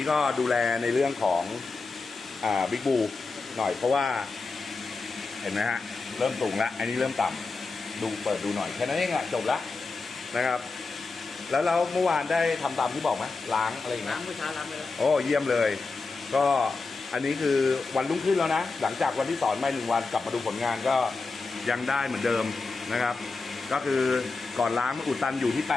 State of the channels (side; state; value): right; quieter; 4.0 dB